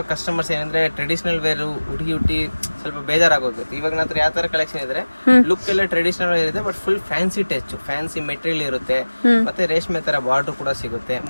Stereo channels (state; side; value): inverted; both; correlation -1.00